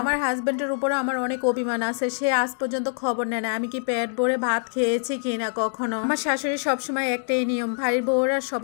আমার হাজবেন্ডের উপরে আমার অনেক অভিমান আছে, সে আজ পর্যন্ত খবর নেয় না আমি কি পেট ভরে ভাত খেয়েছি কিনা কখনো। আমার শাশুড়ি সবসময় একটাই নিয়ম, বাড়ির বউরা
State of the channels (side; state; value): right; silent; digital silence